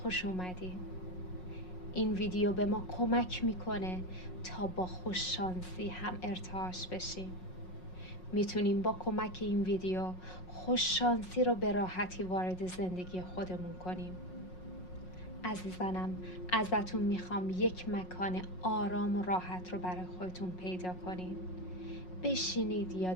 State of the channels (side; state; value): right; late; 5.5 ms